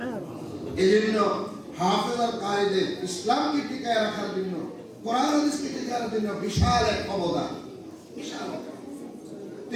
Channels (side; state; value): both; identical; correlation 1.00